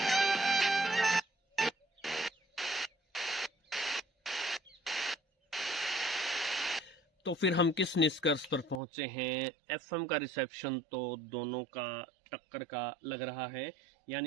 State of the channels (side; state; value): left; drops out; at 8.8 s